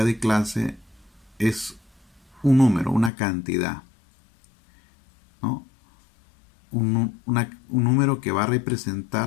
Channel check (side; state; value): right; drops out; at 3.1 s